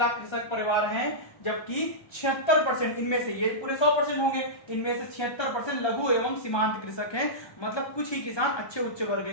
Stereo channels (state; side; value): late; right; 1.2 ms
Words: कृषक परिवार हैं, जबकि 76% इनमें से, ये पूरे 100% होंगे, इनमें से 76% लघु एवं सीमांत कृषक हैं, मतलब कुछ ही किसान अच्छे उच्च वर्ग